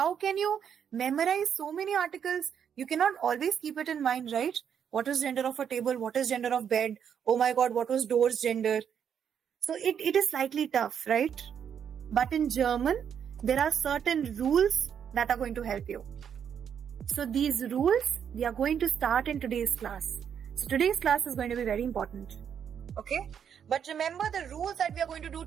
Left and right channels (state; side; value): quieter; left; 8.1 dB